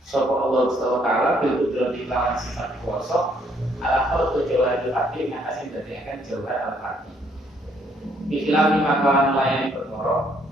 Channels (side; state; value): both; normal; correlation 0.68